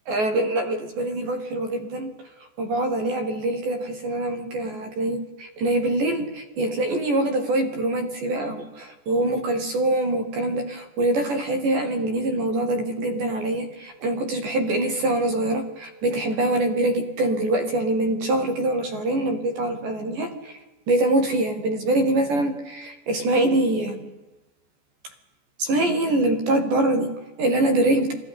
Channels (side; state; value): left; late; 14 ms